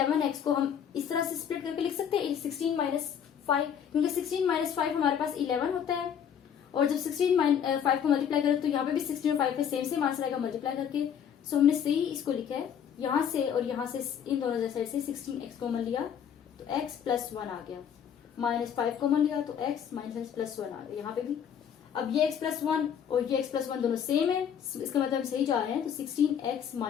को हम इस तरह से स्प्लिट करके लिख सकते हैं 16 माइनस 5, क्योंकि 16 माइनस 5 हमारे पास 11 होता है और जब 16 5 को मल्टीप्लाई करें तो यहाँ पे भी 16 और 5 पे सेम आंसर आएगा मल्टीप्लाई करके। सो हमने सही इसको लिखा है, यहाँ से और यहाँ से इन दोनों साइड से 16x कॉमन लिया तो x प्लस 1 आ गया, माइनस 5 कॉमन लिया तो x माइनस प्लस 1 आ गया यहाँ पे भी। अब ये x प्लस 1 और ये x प्लस 1 दोनों सेम है, इसका मतलब हम सही जा रहे हैं। तो 16x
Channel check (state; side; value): quieter; right; 8.4 dB